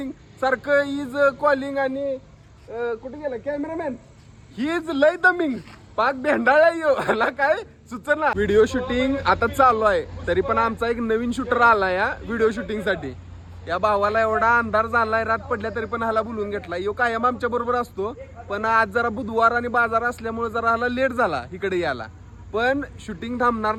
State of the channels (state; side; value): identical; both; correlation 1.00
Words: सारखं इज कॉलिंग. आणि कुठे गेला कॅमेरामॅन, ही इज लय दमिंग, पाक भेंडाळा यो ह्याला काय सुचना. व्हिडिओ शूटिंग आता चालू आहे, तरी पण आमचा एक नवीन शूटर आला या व्हिडिओ शूटिंग साठी. या भावाला एवढा अंधार झालाय, रात पडल्या तरी पण ह्याला बोलून घेतला. यो कायम आमच्या बरोबर असतो, पण आज जरा बुधवार आणि बाजार असल्यामुळे जरा ह्याला लेट झाला इकडे यायला. पण शूटिंग थांबणार